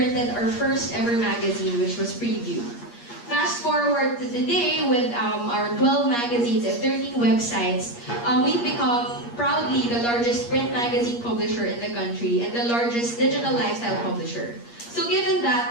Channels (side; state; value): right; late; 8.5 ms